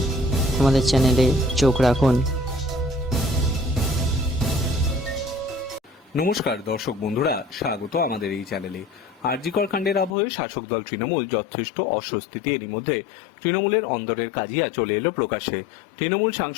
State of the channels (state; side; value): drops out; right; at 10.2 s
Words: আমাদের চ্যানেলে চোখ রাখুন। নমস্কার দর্শক বন্ধুরা, স্বাগত আমাদের এই চ্যানেলে। আরজিকর কাণ্ডের আবহে শাসক দল তৃণমূল যথেষ্ট অস্বস্তিতে। এরই মধ্যে তৃণমূলের অন্দরের কাজিয়া চলে এলো প্রকাশ্যে। তৃণমূল